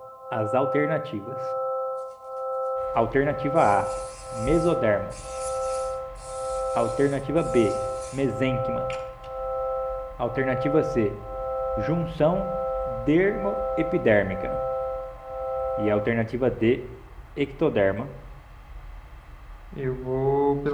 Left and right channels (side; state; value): both; identical; correlation 1.00